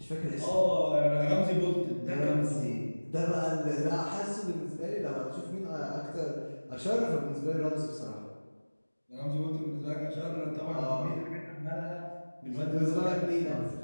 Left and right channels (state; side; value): inverted; both; correlation -1.00